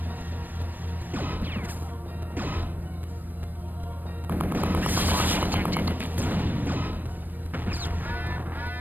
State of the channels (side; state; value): left; late; 0.090 ms